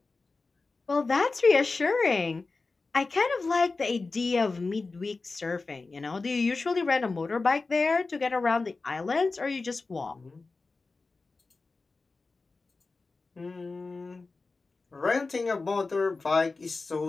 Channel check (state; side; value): quieter; right; 3.8 dB